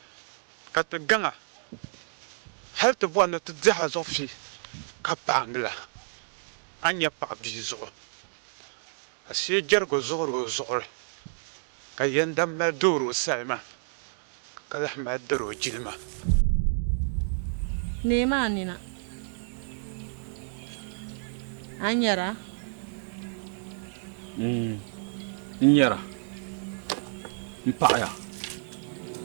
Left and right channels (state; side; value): silent; left; digital silence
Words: ka ti gaŋa hali ti bɔri ni ti diɛhi zuɣu fi ka paangila. A nya paɣ'bia zuɣu. Ashee jɛrigu zuɣuri o zuɣuri. Ka yɛndam mali doori o salima. Ka lahi mali dari o jilima. Neema nina. A nyɛra? N-nyɛra. N-paɣaya.